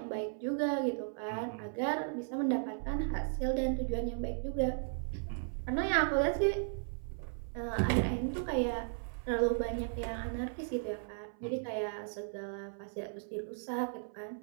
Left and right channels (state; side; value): silent; left; 54 dB below the other